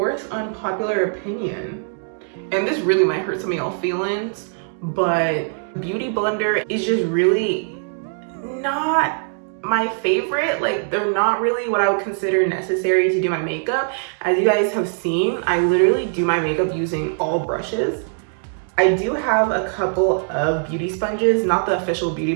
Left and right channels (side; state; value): left; silent; digital silence